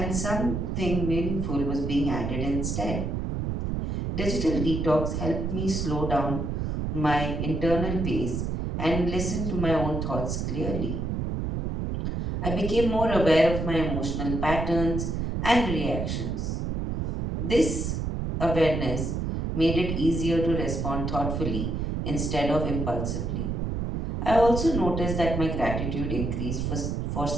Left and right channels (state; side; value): noise; right; rumble, 2 dB below the sound